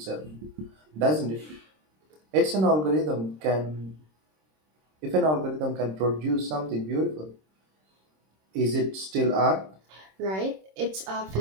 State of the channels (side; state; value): left; late; 26 ms